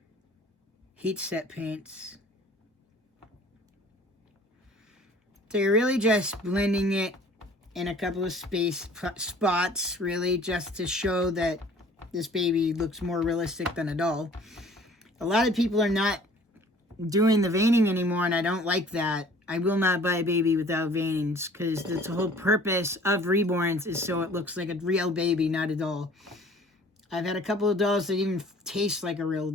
heat set paints. So you're really just blending it in a couple of spots, really, just to show that this baby looks more realistic than a doll. A lot of people are not doing the veining anymore, and I don't like that. I will not buy a baby without veinings, because the whole purpose of reborns is so it looks like a real baby, not a doll. I've had a couple of dolls that even taste like a real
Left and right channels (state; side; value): normal; both; correlation 0.51